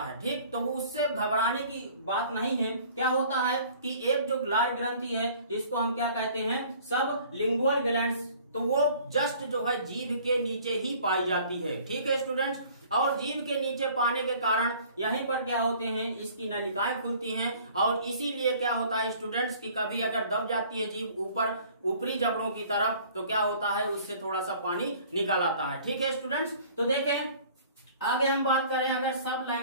ठीक, तो वो उससे घबराने की बात नहीं है। क्या होता है कि एक जो लार ग्रंथि है जिसको हम क्या कहते हैं, सब लिंगुअल ग्लैंड्स, तो वो जस्ट जो है जीभ के नीचे ही पाई जाती है। ठीक है स्टूडेंट्स, और जीभ के नीचे पाने के कारण यहीं पर क्या होते हैं, इसकी नलिकाएं खुलती हैं, और इसीलिए क्या होता है स्टूडेंट्स कि कभी अगर दब जाती है जीभ ऊपरी जबड़ों की तरफ, तो क्या होता है उससे थोड़ा सा पानी निकल आता है। ठीक है स्टूडेंट्स, तो देखें आगे हम बात करें अगर सब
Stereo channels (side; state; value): both; inverted; correlation -0.52